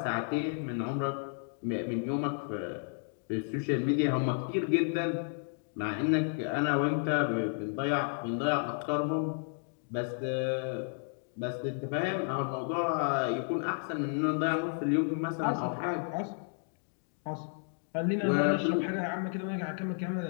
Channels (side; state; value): right; silent; 56 dB below the other